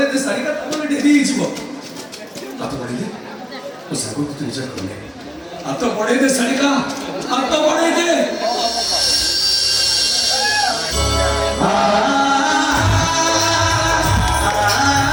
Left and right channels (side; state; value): both; identical; correlation 1.00